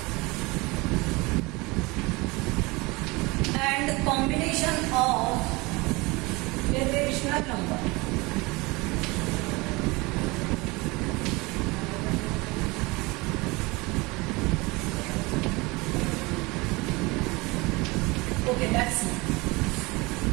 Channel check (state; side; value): quieter; left; 24.3 dB